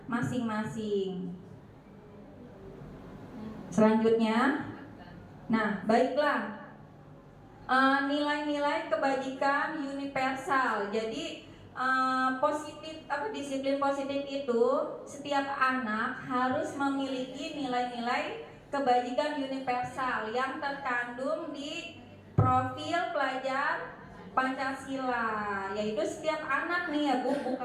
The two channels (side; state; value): both; identical; correlation 1.00